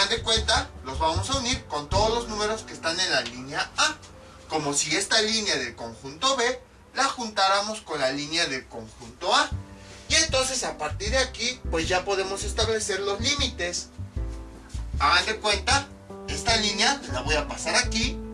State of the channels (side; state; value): both; identical; correlation 1.00